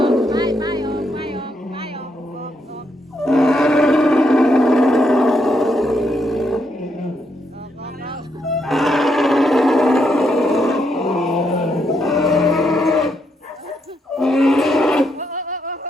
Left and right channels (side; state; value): both; normal; correlation 0.78